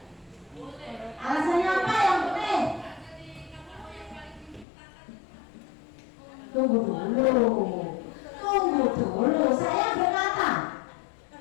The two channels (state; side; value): drops out; right; at 4.7 s